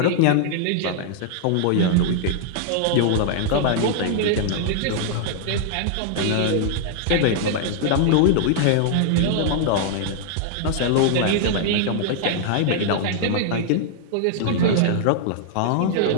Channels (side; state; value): both; different; correlation -0.01